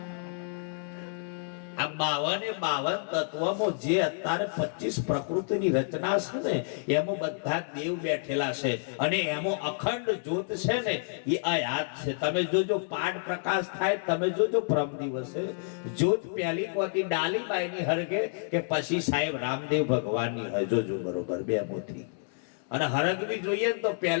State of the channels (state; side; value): silent; right; 58 dB below the other